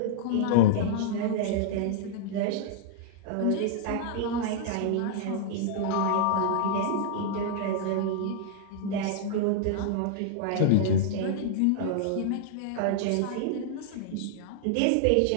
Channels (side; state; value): both; different; correlation -0.01